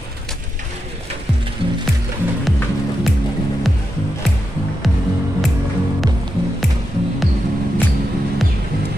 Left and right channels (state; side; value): normal; both; correlation 0.87